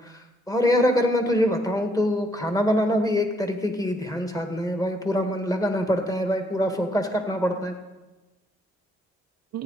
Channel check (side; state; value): both; normal; correlation 0.71